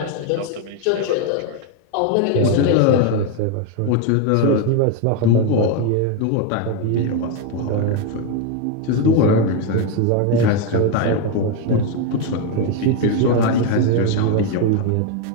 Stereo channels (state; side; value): different; both; correlation 0.02